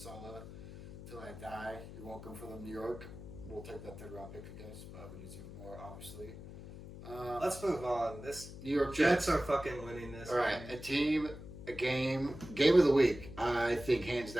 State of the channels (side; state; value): left; noise; hum, 13 dB below the sound